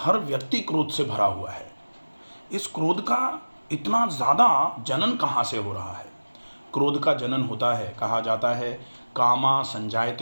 व्यक्ति क्रोध से भरा हुआ है। इस क्रोध का इतना ज़्यादा जनन कहाँ से हो रहा है? क्रोध का जनन होता है, कहा जाता है, कामा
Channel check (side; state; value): both; inverted; correlation -1.00